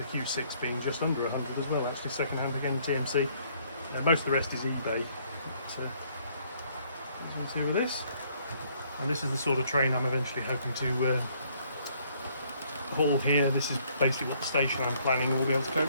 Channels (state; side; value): inverted; both; correlation -0.65